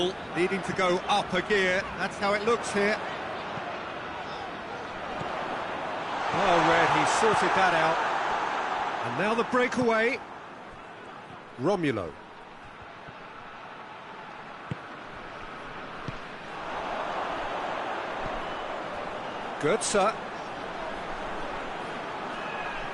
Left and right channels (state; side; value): identical; both; correlation 1.00